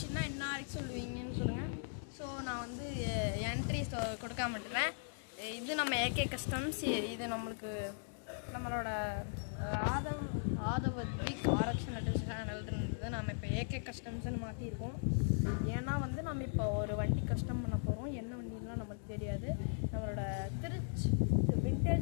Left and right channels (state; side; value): silent; right; digital silence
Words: என்ன வரைக்கும் சொல்லுவீங்கன்னு சொல்லுங்கள். ஸோ நான் வந்து என்ட்ரிஸ் கொடுக்காம விட்டுறேன். இது நம்ம ஏகே கஸ்டம்ஸ். இது நம்மளோட ஆதவத்விக் ஆரக்ஷன் சேனல்ன்றது நம்ம இப்போ ஏகே கஸ்டம்ஸ்ன்னு மாற்றிருக்கோம். ஏன்னா வந்து நம்ம இப்போ ஒரு வண்டி கஸ்டம் பண்ண போகிறோம். என்ன வண்டிலாம் நமக்கு தெரியாது. நம்மளோட திருச்சி